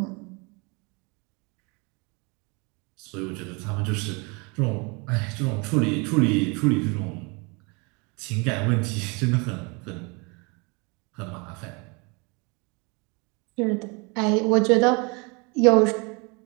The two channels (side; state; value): left; quieter; 30.3 dB